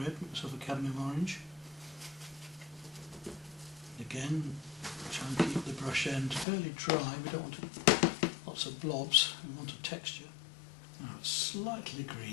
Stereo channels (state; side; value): drops out; right; at 6.5 s